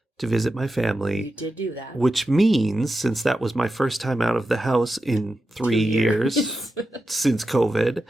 to visit my family. You did do that. Which means, since that was my first time out of the house in 3 years since COVID,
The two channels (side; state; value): both; normal; correlation 0.90